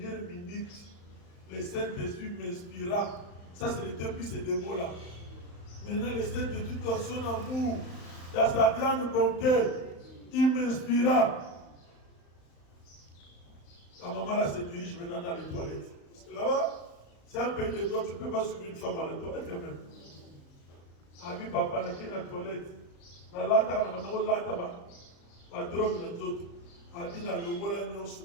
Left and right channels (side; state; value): right; late; 35 ms